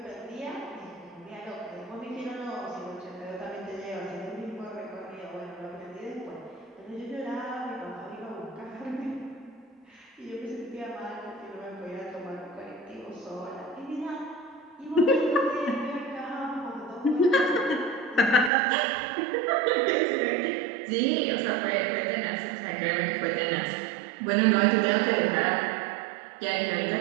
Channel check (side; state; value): left; drops out; at 18.5 s